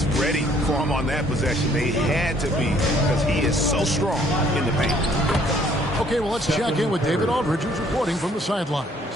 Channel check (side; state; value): both; normal; correlation 0.62